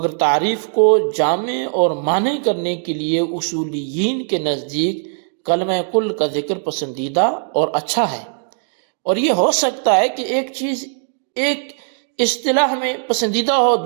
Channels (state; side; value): silent; left; digital silence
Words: تعریف کو جامع اور معنی کرنے کے لیے اصولیین کے نزدیک کلمہ کل کا ذکر پسندیدہ اور اچھا ہے۔ اور یہ ہو سکتا ہے کہ ایک چیز ایک اصطلاح میں پسندیدہ ہو،